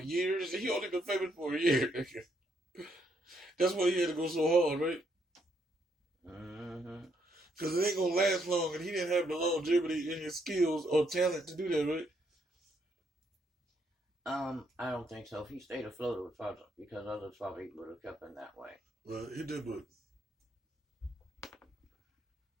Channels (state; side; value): normal; both; correlation 0.74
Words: years. He only been famous for a year. That's why he had to go so hard, right? Mm-hmm. Because it ain't going to last long, and he didn't have the longevity in his skills or talent to do that, right? I don't think so. If he stayed afloat, it was probably because others probably would have kept him that way. Well, he did, but